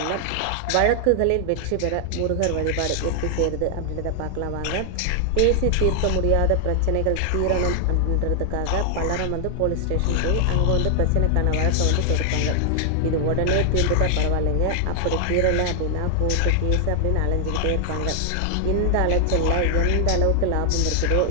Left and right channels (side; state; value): both; different; correlation 0.00